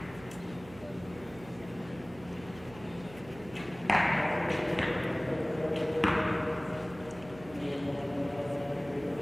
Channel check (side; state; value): right; noise; hum, 18 dB below the sound